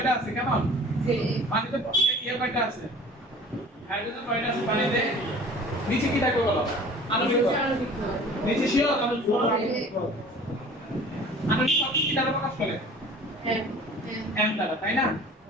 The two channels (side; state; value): both; normal; correlation 0.46